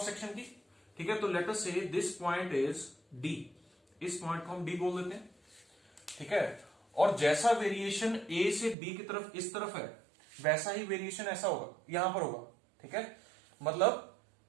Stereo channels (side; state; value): left; drops out; at 8.8 s